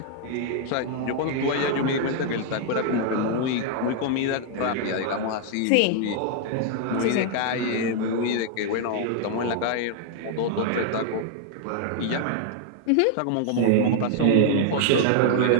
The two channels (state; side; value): different; both; correlation 0.00